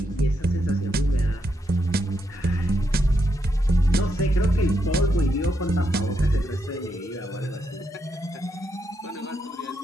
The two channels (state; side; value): normal; both; correlation 0.81